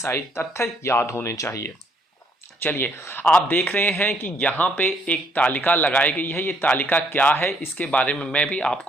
तथ्य याद होने चाहिए। चलिए, आप देख रहे हैं कि यहाँ पे एक तालिका लगाई गई है। ये तालिका क्या है इसके बारे में मैं भी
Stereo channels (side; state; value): both; normal; correlation 0.68